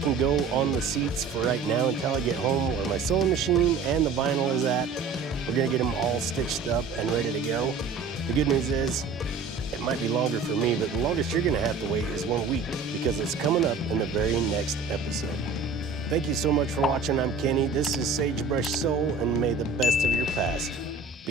go on the seats for right now until I get home where my sewing machine and the vinyl is at. We're gonna get them all stitched up and ready to go. The good news is, it might be longer for me, but the longest you're gonna have to wait is 1 week because it's coming up in the very next episode. Thank you so much for watching. I'm Kenny. This is Sagebrush Soul, and may the best of your past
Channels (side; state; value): left; quieter; 4.6 dB